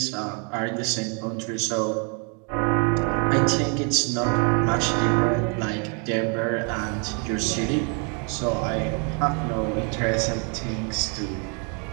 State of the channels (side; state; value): left; quieter; 37.0 dB